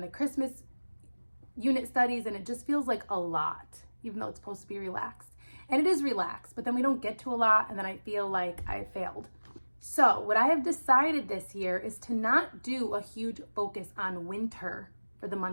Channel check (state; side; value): inverted; both; correlation -1.00